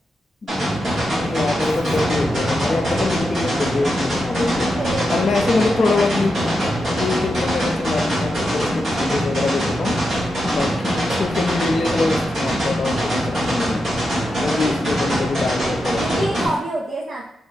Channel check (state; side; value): normal; both; correlation 0.87